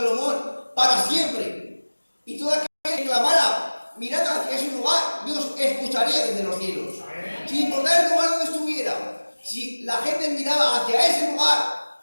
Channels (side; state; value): both; inverted; correlation -1.00